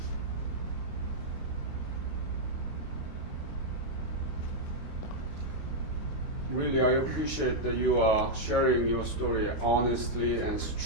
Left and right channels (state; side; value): late; right; 22 ms